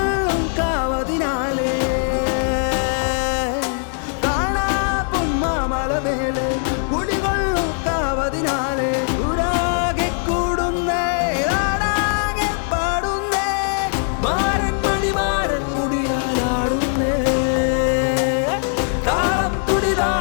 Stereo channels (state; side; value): silent; right; 62 dB below the other